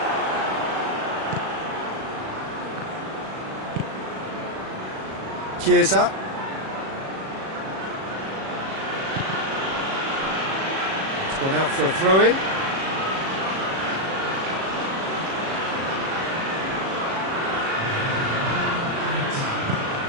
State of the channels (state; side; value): late; left; 37 ms